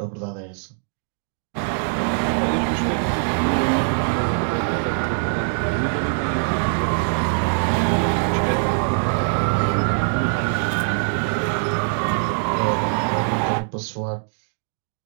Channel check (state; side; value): silent; left; 63 dB below the other